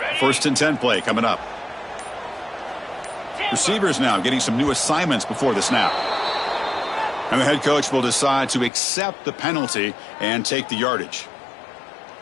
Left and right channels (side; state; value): right; drops out; at 8.7 s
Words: First and 10 play coming up. Receivers now getting some new assignments before the snap. And the head coach will decide to accept the penalty and take the yardage.